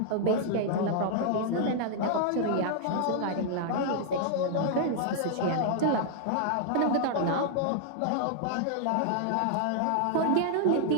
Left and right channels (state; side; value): different; both; correlation -0.01